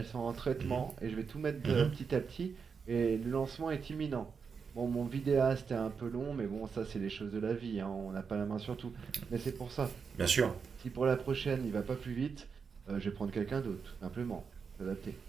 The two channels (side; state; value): left; quieter; 5.8 dB